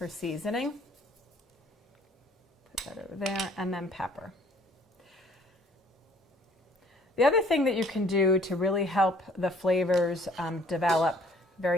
seasoning. Put that over there, and then pepper. The other thing that you can do to really help the flavors develop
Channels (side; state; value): both; normal; correlation 0.58